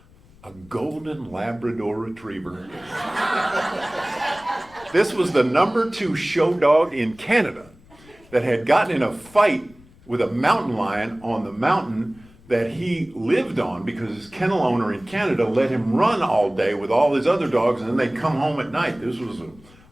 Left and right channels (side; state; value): left; noise; rumble, 26 dB below the sound